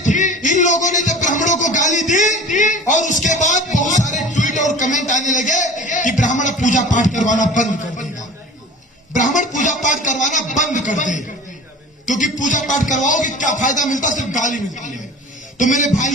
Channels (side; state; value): both; normal; correlation 0.41